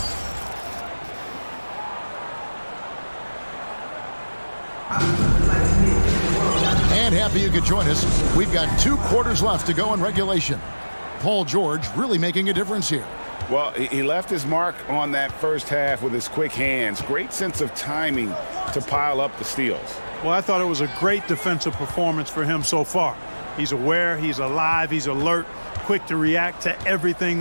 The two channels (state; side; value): inverted; both; correlation -1.00